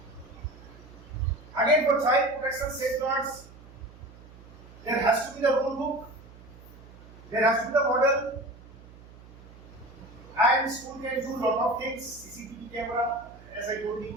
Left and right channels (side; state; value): right; noise; hum, 20 dB below the sound